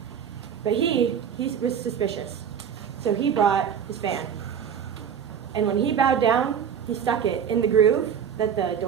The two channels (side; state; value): left; quieter; 8.0 dB